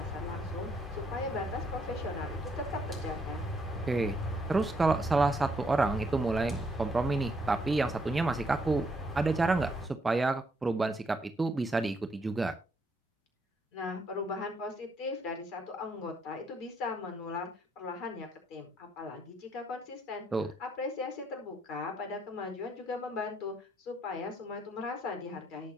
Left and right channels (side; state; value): both; normal; correlation 0.73